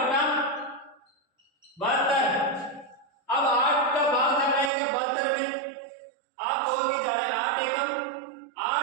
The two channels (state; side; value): drops out; left; at 4.7 s